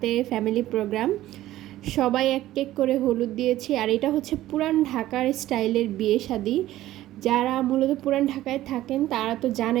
ফ্যামিলি প্রোগ্রাম। সবাই এক এক করে হলুদ দিয়েছি। আর এটা হচ্ছে পুরান ঢাকার স্টাইলের বিয়ে শাদী। যারা মূলত পুরান ঢাকায় থাকেন তারা তো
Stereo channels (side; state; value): left; quieter; 14.8 dB